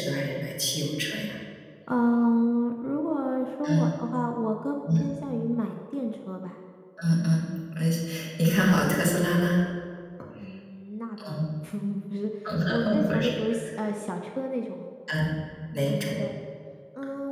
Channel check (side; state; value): both; identical; correlation 1.00